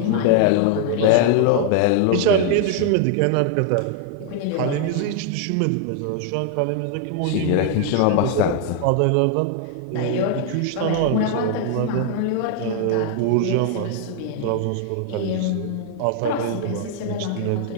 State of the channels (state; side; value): different; both; correlation 0.00